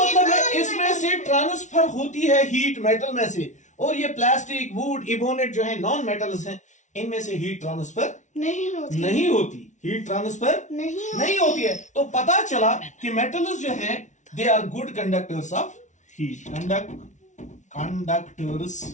है non-metal इसमें से ट्रांसफर होती है हीट मेटल में से, और ये प्लास्टिक, वुड, इबोनेट जो है नॉन मेटल्स हैं, इनमें से हीट ट्रांसफर नहीं होती हीट ट्रांसफर नहीं होती है। तो पता चला कि मेटल्स जो है they are good conductors of heat, conductors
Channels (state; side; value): late; right; 0.36 ms